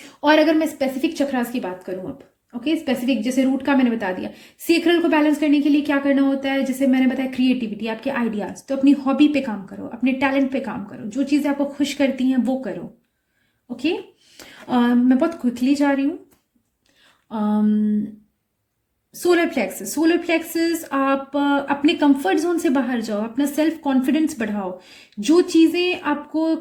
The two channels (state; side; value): identical; both; correlation 1.00